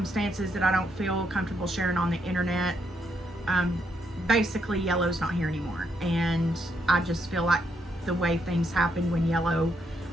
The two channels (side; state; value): both; normal; correlation 0.77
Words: that I don't feel comfortable sharing on the internet. Basically, Yellow's not here anymore, and I just feel like the way things happened when Yellow